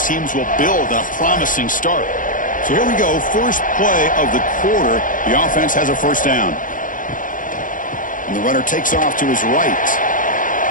teams will build on a promising start. So here we go, first play of the quarter. The offense has a 1st down. And the runner takes off to his right.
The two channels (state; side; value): late; right; 0.39 ms